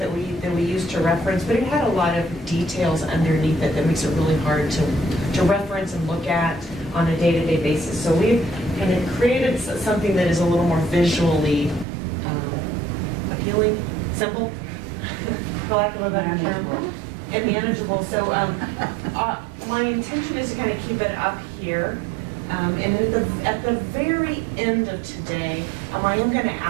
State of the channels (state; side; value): drops out; left; at 11.9 s